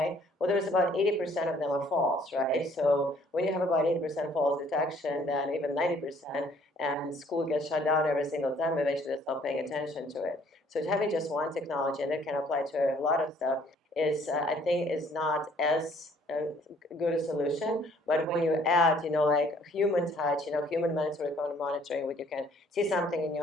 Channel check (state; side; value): normal; both; correlation 0.60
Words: Well, there's about 80% of them are false, right? So when you have about 80% false detection, then even 90%, and school gets shut down every single time, eventually they stop paying attention to it. So having just one technology, and it can apply to a lot of stuff, is I think is not as good a solution. But when you add, like human touch, human mandatory monitoring, where you can see something in